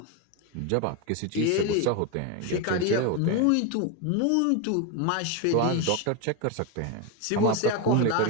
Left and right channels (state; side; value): different; both; correlation 0.02